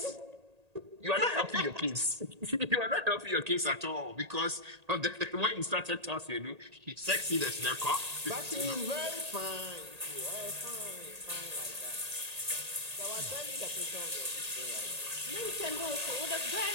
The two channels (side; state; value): left; late; 1.8 ms